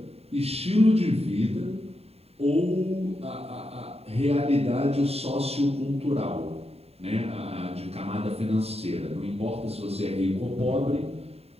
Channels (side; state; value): left; late; 0.29 ms